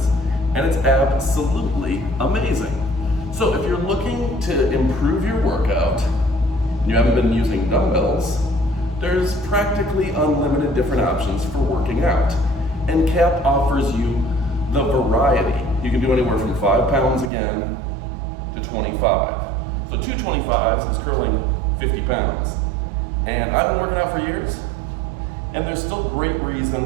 and it's absolutely amazing. So if you're looking to improve your workout, and you haven't been using dumbbells, there's practically unlimited different options for working out. And CAP offers you the variety. You can do anywhere from 5 pounds again to 25. So 225s is curling 50 pounds. And I've been working out for years, and there's still great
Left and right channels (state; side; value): drops out; left; at 17.3 s